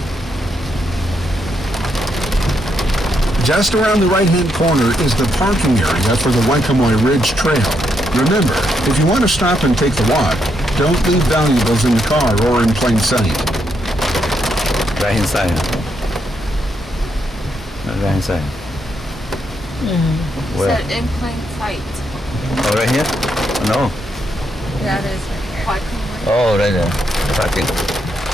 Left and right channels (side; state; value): both; normal; correlation 0.79